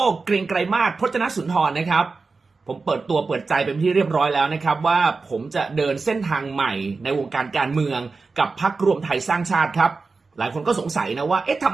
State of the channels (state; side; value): quieter; left; 4.2 dB